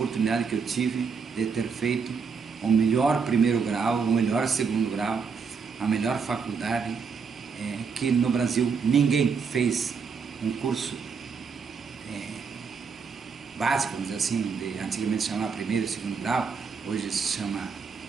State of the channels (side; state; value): left; quieter; 5.7 dB